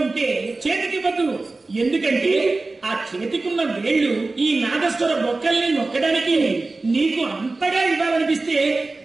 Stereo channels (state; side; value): quieter; left; 3.4 dB